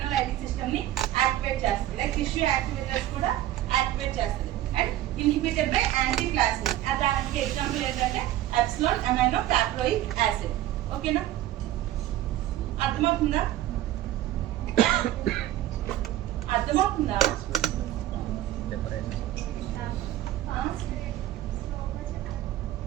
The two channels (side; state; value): left; quieter; 13.7 dB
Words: సిస్టమ్ ని యాక్టివేట్ చేస్తుంది. లైక్ టిష్యూ యాక్టివేటర్స్ కూడా యాక్టివేట్ చేస్తుంది. And inhibited by anti plasmin. దానికి ఎగ్జాంపుల్ ఏంటంటే ఎప్సిలాన్ అమైనో సాక్రోయిక్ యాసిడ్. ఓకేనా, అర్థమవుతుందా?